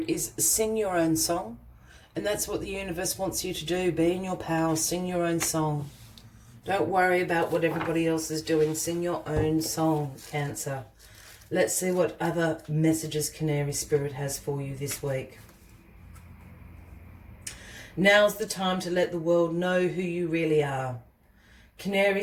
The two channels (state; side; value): identical; both; correlation 1.00